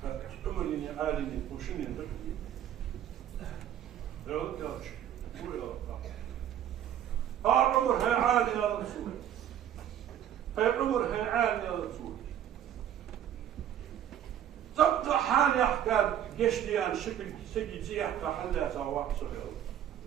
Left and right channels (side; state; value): left; quieter; 10.5 dB